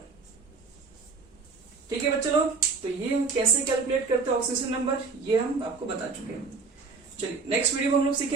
ठीक है बच्चे लोग, तो ये हम कैसे कैलकुलेट करते हैं ऑक्सीडेशन नंबर, ये हम आपको बता चुके हैं। चलिए नेक्स्ट वीडियो में हम लोग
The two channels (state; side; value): quieter; left; 4.5 dB